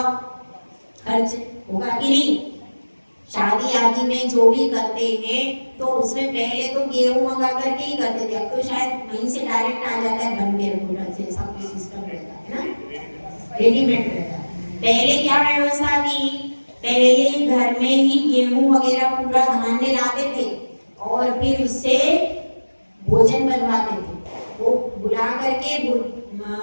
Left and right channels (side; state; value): both; inverted; correlation -1.00